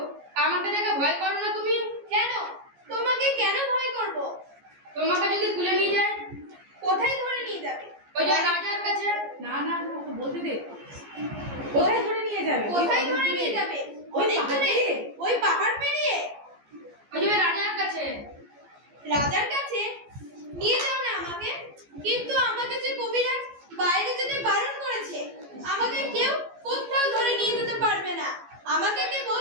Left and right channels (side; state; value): left; late; 14 ms